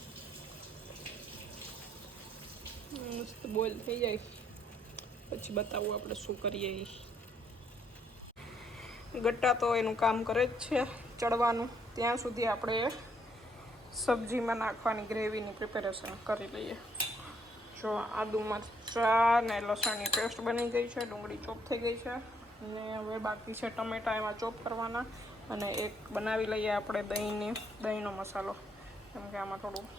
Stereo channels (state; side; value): normal; both; correlation 0.70